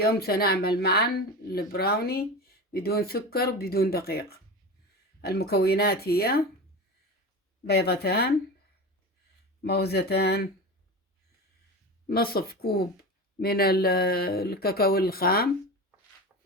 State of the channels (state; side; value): normal; both; correlation 0.27